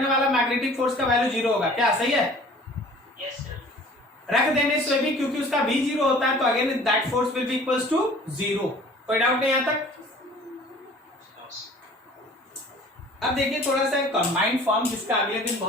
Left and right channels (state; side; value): normal; both; correlation 0.49